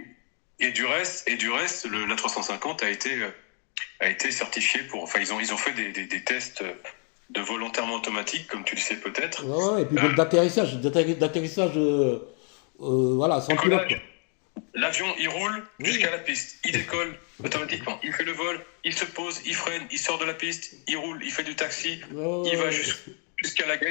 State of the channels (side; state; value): right; quieter; 39.5 dB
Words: Et du reste, l'A350 a été certifié ils ont fait des tests de vol entièrement automatique, comme tu le sais peut-être. Et puis d'atterrissage, voilà, sans pilote. L'avion, il roule jusqu'à la piste, il décolle automatiquement, il fait le vol, il se pose, il freine, il sort de la piste, il roule, il fait du taxi, il va jusqu'à la